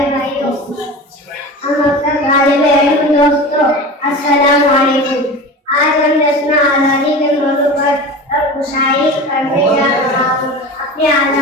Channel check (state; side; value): normal; both; correlation 0.32